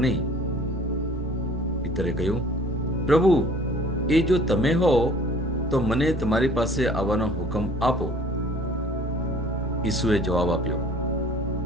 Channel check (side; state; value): both; normal; correlation 0.52